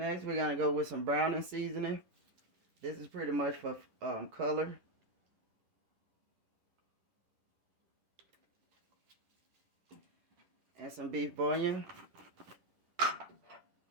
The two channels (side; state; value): left; late; 11 ms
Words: we're gonna go with some browning seasoning. This is pretty much for color. And some beef bouillon. Oh,